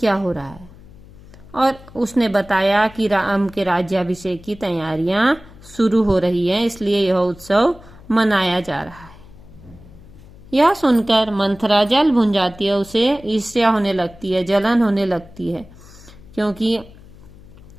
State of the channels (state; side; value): noise; left; hum, 21 dB below the sound